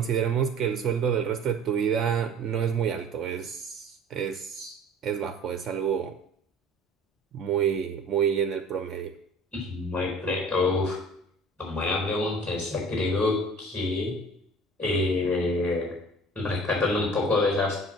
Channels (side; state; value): both; normal; correlation 0.45